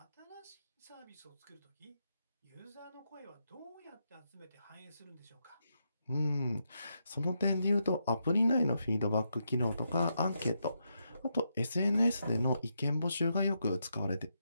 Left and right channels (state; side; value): inverted; both; correlation -0.82